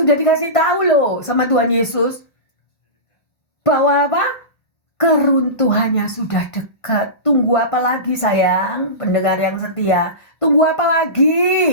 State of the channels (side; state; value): right; late; 1.5 ms